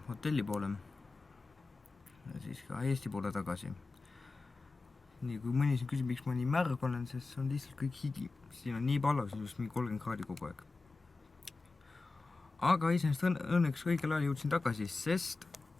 hotelli poole. Ja siis ka Eesti poole tagasi. Nii, kui mõni siin küsib, miks ma nii märg olen, sest see on lihtsalt kõik higi. Siin on nii pallas, just mingi 30 kraadi kogu aeg. Aga iseenesest õnneks õigel ajal jõudsin tagasi, sest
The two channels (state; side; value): quieter; right; 3.7 dB